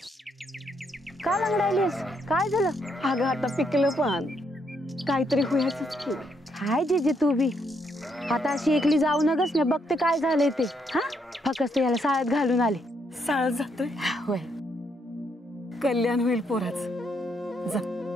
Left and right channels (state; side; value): normal; both; correlation 0.75